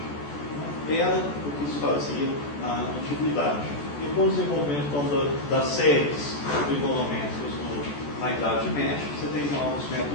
Era o que se fazia na antiguidade. E com o desenvolvimento então, das séries trigonométricas na Idade Média, você tem novos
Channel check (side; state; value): right; late; 14 ms